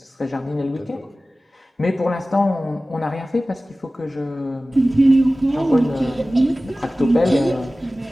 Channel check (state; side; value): normal; both; correlation 0.97